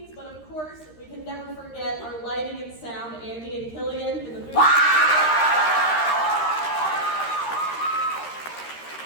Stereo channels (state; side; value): late; right; 13 ms